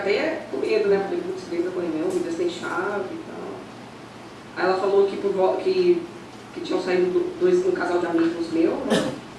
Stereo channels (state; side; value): identical; both; correlation 1.00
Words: com medo, né? Falei, putz, 3 da manhã, o vida sem chave e tal. Aí ela falou que tinham saído um casal de amigos meus, né?